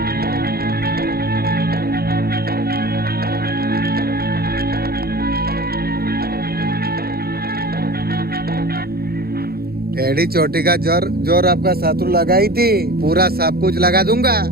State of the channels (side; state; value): left; late; 0.45 ms